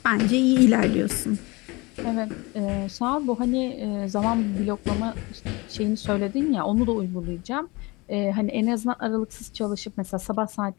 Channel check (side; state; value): right; quieter; 24.7 dB